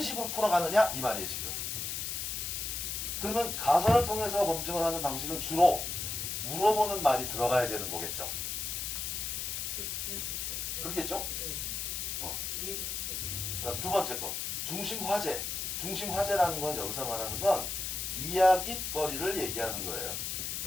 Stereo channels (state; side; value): noise; left; hiss, 3 dB below the sound